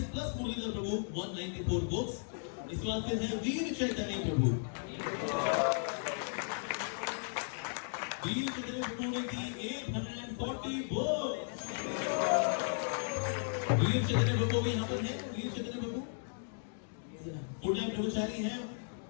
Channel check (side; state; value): right; silent; digital silence